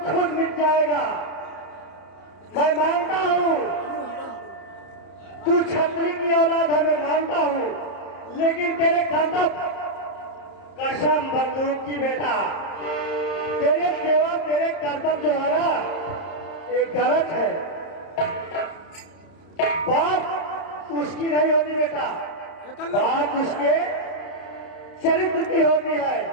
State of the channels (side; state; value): right; late; 30 ms